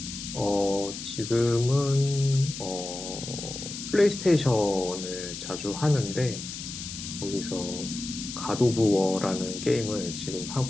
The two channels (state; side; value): noise; left; hiss, 8 dB below the sound